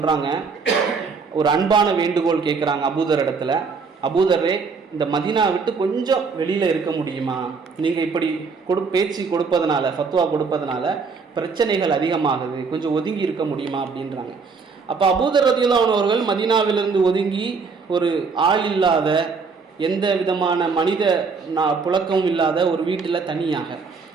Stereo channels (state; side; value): quieter; left; 5.0 dB